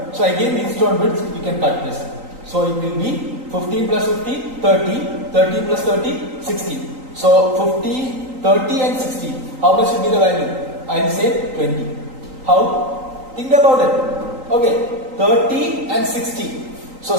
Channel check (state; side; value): late; left; 3.9 ms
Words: So again Wheatstone bridge, you can cut this. So it will be 15 plus 50, 30, 30 plus 30, 60. So 50, 30 and 60. How much will be the value? I will say 20. How? Think about it. Okay, 30 and 60. So